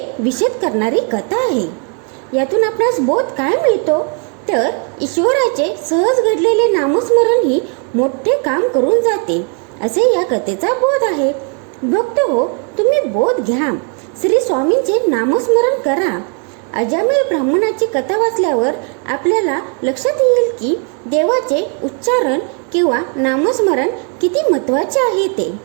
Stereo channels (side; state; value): left; quieter; 39.9 dB